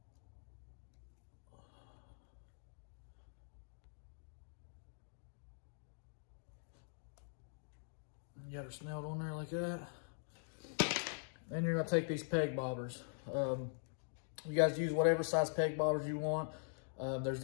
You got her snelled on there like that. Then you're gonna take these peg bobbers. You guys use whatever size peg bobbers you want. There's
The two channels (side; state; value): right; silent; digital silence